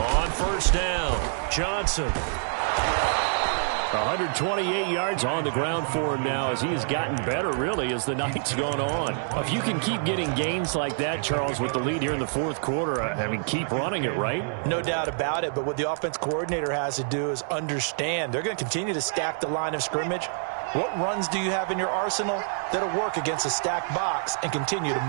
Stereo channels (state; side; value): silent; left; digital silence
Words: 1st down, Johnson. 128 yards on the ground for him now as he has gotten better, really, as the night's gone on. If you can keep getting gains like that, Charles, with the lead here in the 4th quarter, I mean, keep running it, right? No doubt about it, but what the offense coordinator has to do is understand. They're going to continue to stack the line of scrimmage. What runs do you have in your arsenal that'll work against a stacked box and continue to